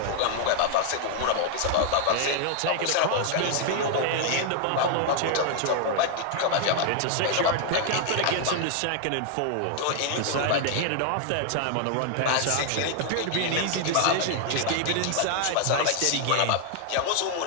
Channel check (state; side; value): different; both; correlation 0.00